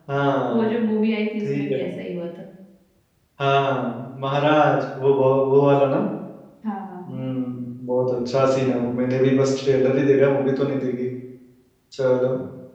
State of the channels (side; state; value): both; identical; correlation 1.00